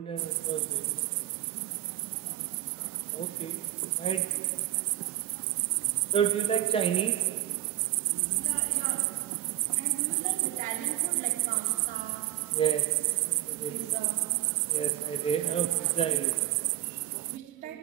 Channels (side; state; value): left; quieter; 14.1 dB